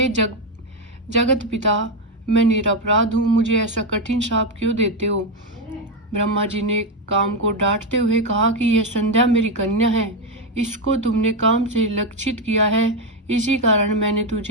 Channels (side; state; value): both; normal; correlation 0.06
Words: जगत पिता, मैं निरपराध हूँ, मुझे ऐसा कठिन शाप क्यों देते हो? ब्रह्मा जी ने काम को डांटते हुए कहा कि यह संध्या मेरी कन्या है, इसको तुमने काम से लक्षित किया है, इसी कारण मैंने